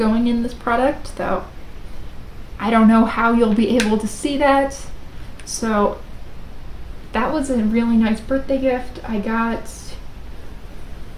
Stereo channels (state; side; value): identical; both; correlation 1.00